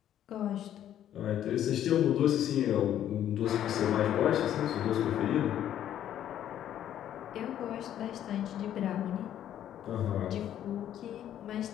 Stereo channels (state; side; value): quieter; right; 11.0 dB